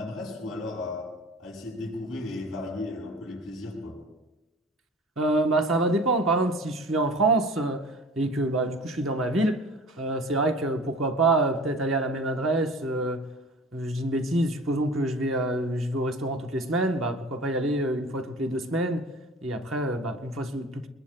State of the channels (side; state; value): both; normal; correlation 0.41